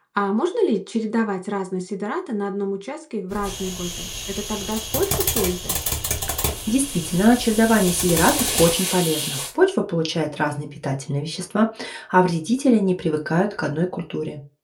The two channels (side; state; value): both; identical; correlation 1.00